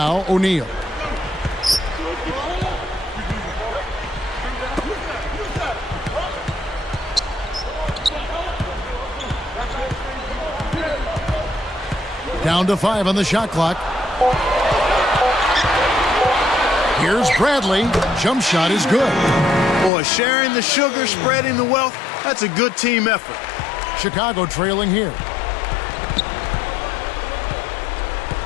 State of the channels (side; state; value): right; drops out; at 19.9 s